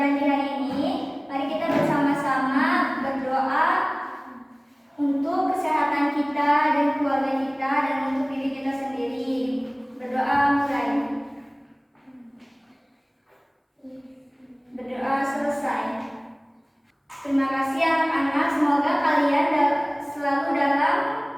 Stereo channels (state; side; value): identical; both; correlation 1.00